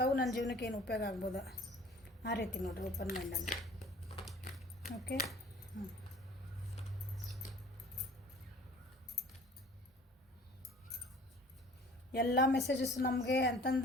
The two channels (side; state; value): both; normal; correlation 0.48